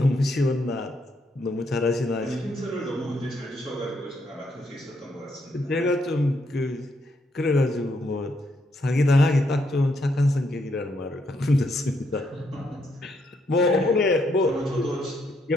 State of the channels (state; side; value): normal; both; correlation 0.76